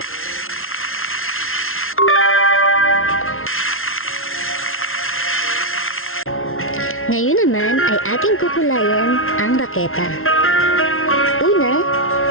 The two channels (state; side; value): late; right; 0.61 ms